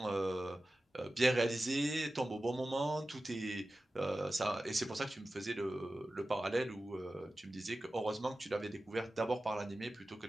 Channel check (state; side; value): normal; both; correlation 0.95